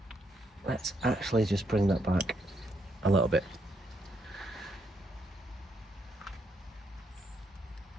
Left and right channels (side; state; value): both; normal; correlation 0.76